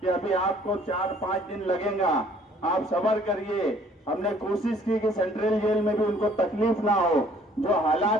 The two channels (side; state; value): both; normal; correlation 0.58